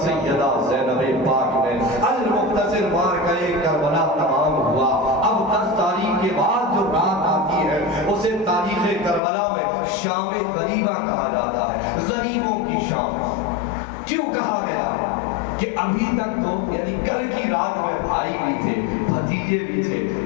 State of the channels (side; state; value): right; drops out; at 9.2 s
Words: سیدہ زینب پاک نے، المختصر مارکہ کربلا تمام ہوا۔ اب 10 تاریخ کے بعد جو رات آتی ہے اسے تاریخ کربلا میں شام غریبہ کہا جاتا ہے، غریبوں کی شام۔ کیوں کہا گیا؟ کہ ابھی تک تو یعنی کل کی رات میں بھائی بھی تھے، بھتیجے بھی تھے،